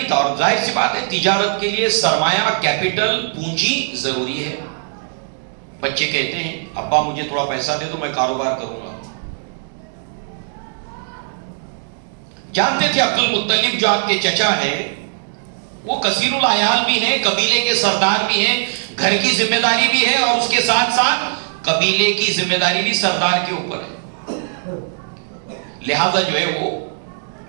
تھا، اور ظاہر سی بات ہے تجارت کے لیے سرمایہ، کیپٹل، پونجی ضروری ہے. بچے کہتے ہیں ابا مجھے تھوڑا پیسہ دے دو میں کاروبار کروں گا. جانتے تھے عبد المطلب جو آپ کے چچا ہے وہ کثیر العیال بھی ہیں، قبیلے کے سردار بھی ہیں، گھر کی ذمہ داری بھی ہے، اور اس کے ساتھ ساتھ قبیلے کی ذمہ داری بھی سردار کے اوپر ہے. لہذا جو ہے وہ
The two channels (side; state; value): left; silent; digital silence